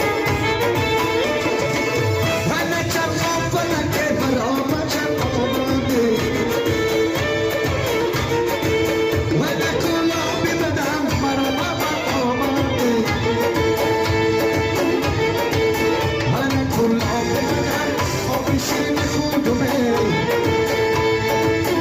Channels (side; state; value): both; identical; correlation 1.00